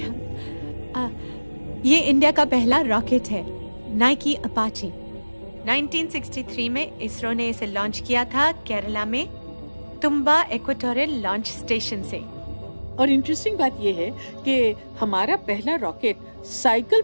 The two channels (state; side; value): inverted; both; correlation -1.00